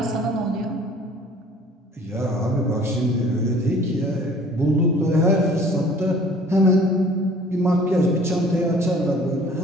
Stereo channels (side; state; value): both; normal; correlation 0.51